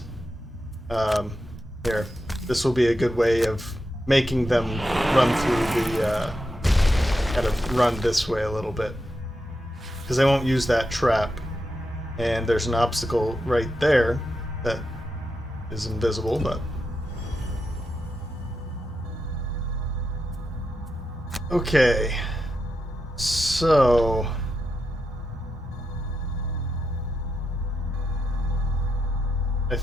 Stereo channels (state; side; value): normal; both; correlation 0.86